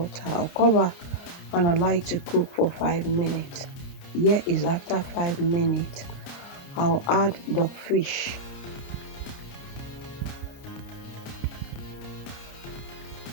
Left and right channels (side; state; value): right; late; 29 ms